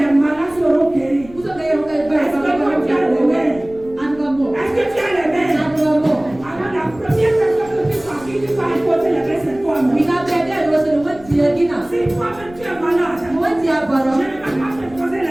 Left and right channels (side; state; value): left; noise; rumble, 21 dB below the sound